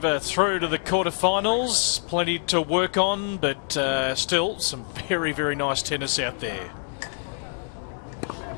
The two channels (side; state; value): right; silent; 61 dB below the other